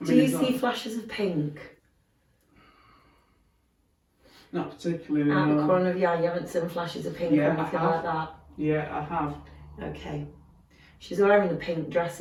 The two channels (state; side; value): identical; both; correlation 1.00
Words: Do you see flashes of pink Not particularly, out the no. corner of your eye? You haven't seen flashes of pink Yeah, or I anything have. like that? Yeah, I have. Okay. She's wearing a pink